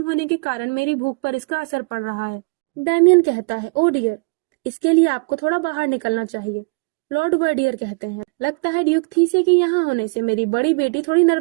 होने के कारण मेरी भूख पर इसका असर पड़ रहा है। डैमियन कहता है, ओ डियर, इसके लिए आपको थोड़ा बाहर निकलना चाहिए। लॉर्ड वर्डियर कहते हैं, लगता है ड्यूक थीसे के यहाँ होने से मेरी बड़ी बेटी थोड़ी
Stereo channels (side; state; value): left; quieter; 31.5 dB